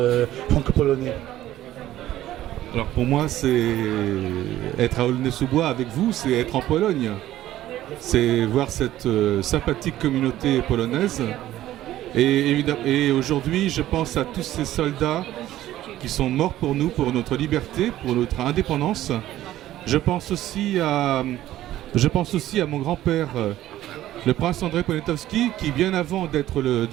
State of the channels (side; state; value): left; quieter; 13.9 dB